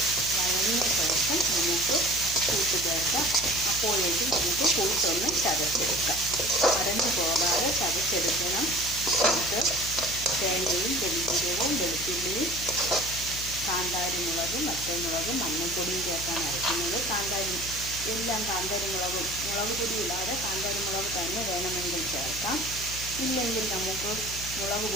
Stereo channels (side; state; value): left; noise; hum, 12 dB below the sound